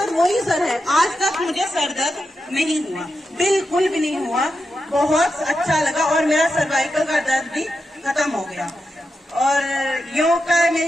वही सर है। आज तक मुझे सर दर्द नहीं हुआ, बिल्कुल भी नहीं हुआ, बहुत अच्छा लगा। और मेरा सर्वाइकल का दर्द भी खत्म हो गया। और योग का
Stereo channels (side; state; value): both; normal; correlation 0.88